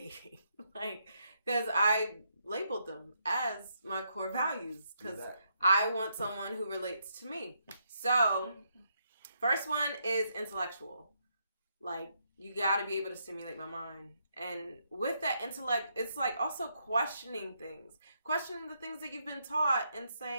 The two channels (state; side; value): inverted; both; correlation -0.78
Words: like because I labeled them as my core values because I want someone who relates to me. So first one is intellectual. Like you got to be able to stimulate my mind. And with that intellect, it's like also questioning things, questioning the things that you've been taught and